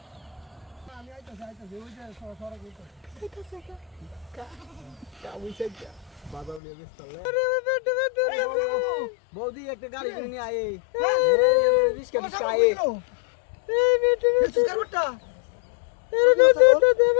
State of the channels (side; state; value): right; drops out; at 6.6 s